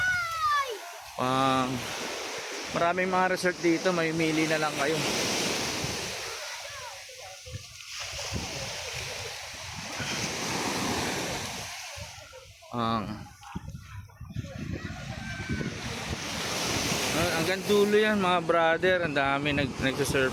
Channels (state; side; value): identical; both; correlation 1.00